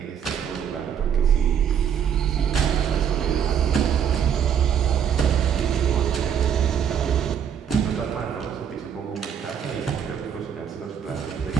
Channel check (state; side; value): quieter; left; 8.2 dB